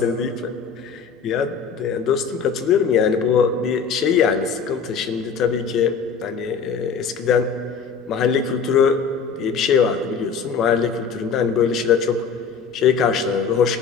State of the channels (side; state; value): right; quieter; 6.0 dB